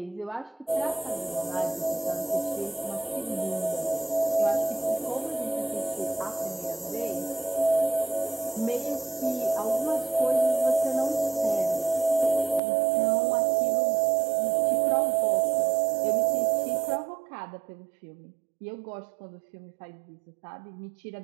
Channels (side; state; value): left; drops out; at 12.6 s